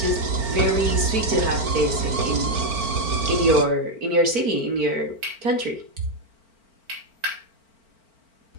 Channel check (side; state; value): left; late; 4.4 ms